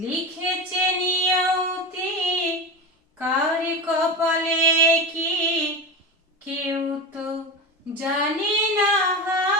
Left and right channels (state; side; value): normal; both; correlation 0.22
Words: লিখেছে নিয়তি, কার কপালে কি কেউ তো জানে না।